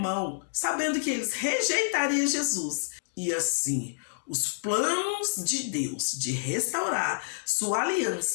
sabendo que eles rejeitariam Jesus. E assim, os planos de Deus de restaurar sua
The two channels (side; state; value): right; silent; digital silence